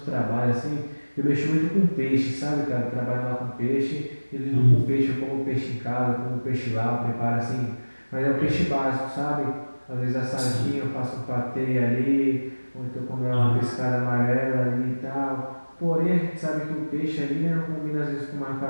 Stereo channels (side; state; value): both; inverted; correlation -1.00